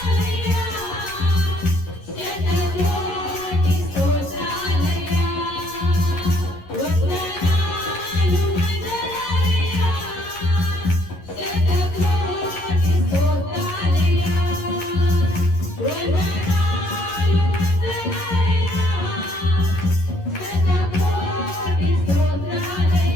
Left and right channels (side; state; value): right; late; 11 ms